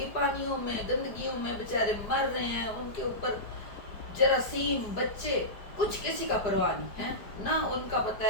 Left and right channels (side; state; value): right; late; 5.0 ms